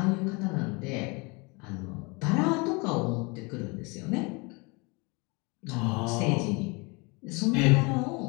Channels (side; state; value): right; quieter; 28.6 dB